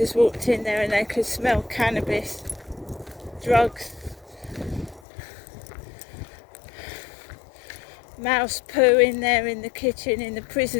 walked in there and they could smell cannabis, drugs, mouse poo in there in the kitchen, in the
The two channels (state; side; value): drops out; right; at 5.0 s